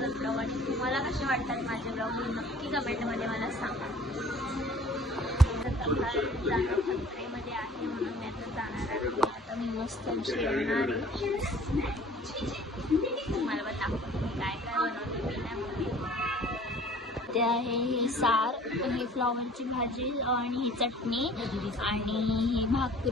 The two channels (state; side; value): normal; both; correlation 0.50